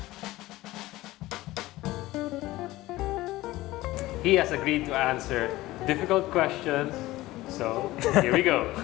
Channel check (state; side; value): quieter; right; 17.8 dB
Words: He has agreed to answer difficult questions, so here we go.